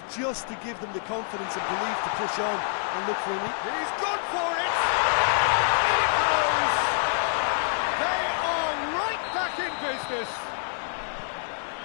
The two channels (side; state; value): right; silent; 60 dB below the other